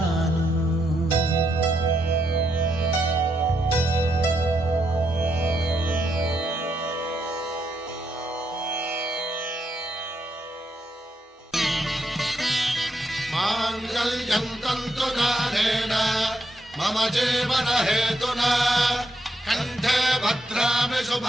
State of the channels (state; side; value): normal; both; correlation 0.80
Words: మాంగళ్యం తంతునానేన మమ జీవన హేతునా కంఠే భద్రామి